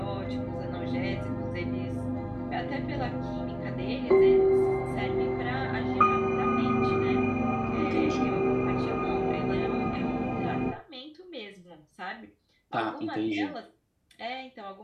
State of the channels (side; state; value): both; identical; correlation 1.00